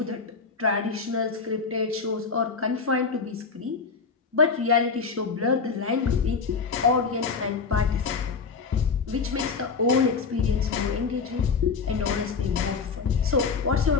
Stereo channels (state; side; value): quieter; right; 5.1 dB